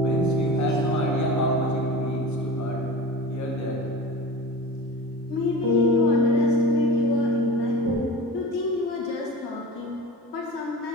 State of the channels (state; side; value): normal; both; correlation 0.34